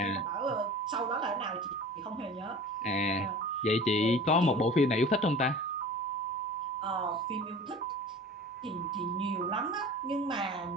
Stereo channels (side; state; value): both; normal; correlation 0.40